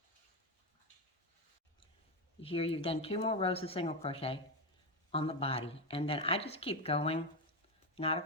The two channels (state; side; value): normal; both; correlation 0.11